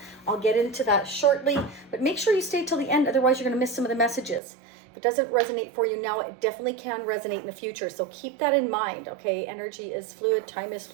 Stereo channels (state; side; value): drops out; left; at 4.4 s